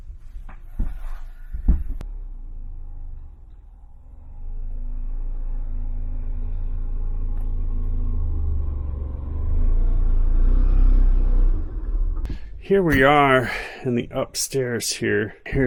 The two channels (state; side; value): identical; both; correlation 1.00